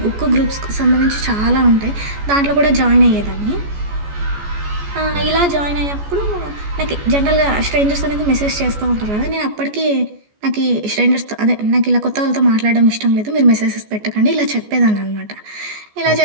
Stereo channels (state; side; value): late; left; 14 ms